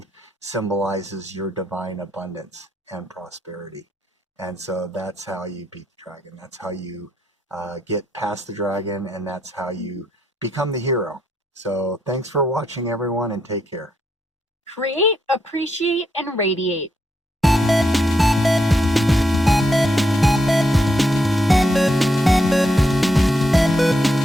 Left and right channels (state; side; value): normal; both; correlation 0.78